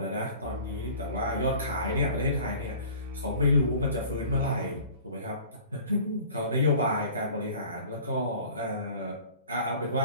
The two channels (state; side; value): inverted; both; correlation -0.45